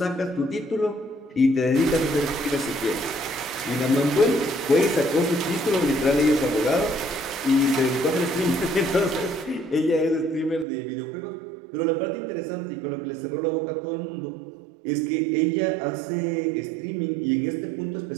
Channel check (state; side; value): drops out; left; at 10.7 s